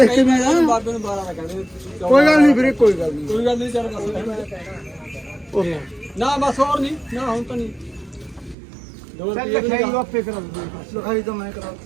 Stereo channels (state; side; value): drops out; left; at 8.6 s